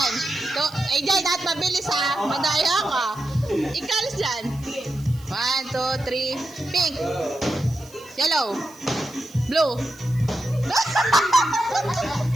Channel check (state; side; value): noise; right; hiss, 23 dB below the sound